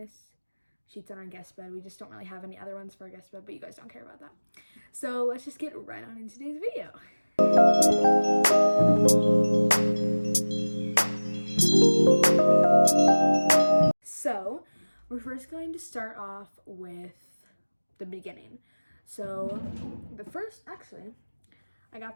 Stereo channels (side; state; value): both; inverted; correlation -1.00